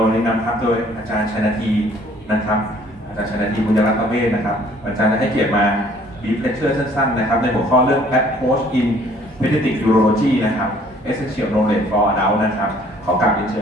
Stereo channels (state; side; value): normal; both; correlation 0.58